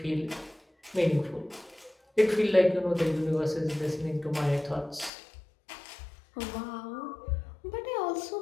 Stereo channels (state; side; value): drops out; right; at 5.1 s